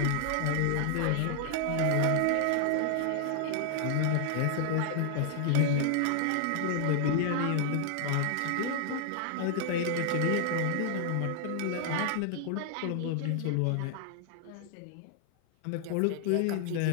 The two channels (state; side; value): different; both; correlation 0.00